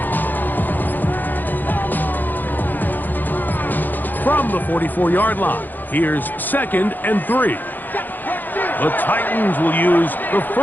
From the 44-yard line, here's 2nd and 3. The Titans will use the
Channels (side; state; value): right; late; 0.087 ms